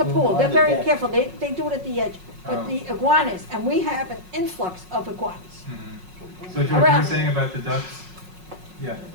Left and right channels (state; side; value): late; left; 5.5 ms